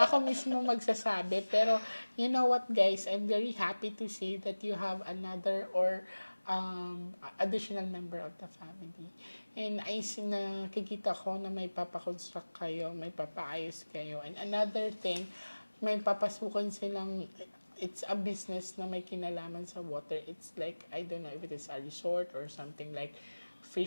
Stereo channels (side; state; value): both; inverted; correlation -1.00